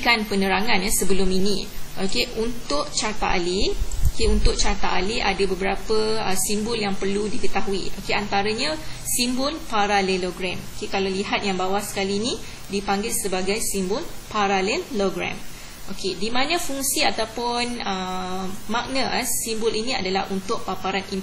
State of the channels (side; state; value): both; identical; correlation 1.00